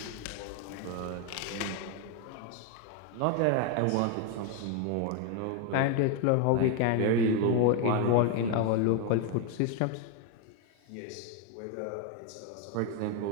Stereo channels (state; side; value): different; both; correlation 0.01